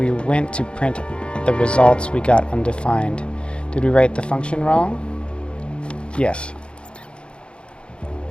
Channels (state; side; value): late; right; 0.056 ms